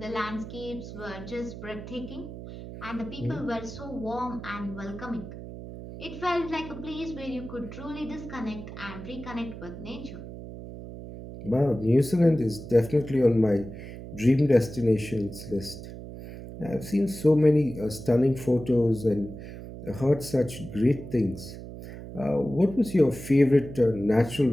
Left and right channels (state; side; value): noise; right; hum, 12 dB below the sound